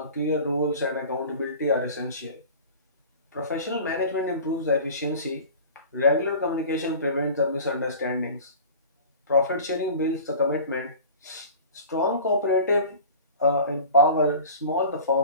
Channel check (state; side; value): inverted; both; correlation -0.40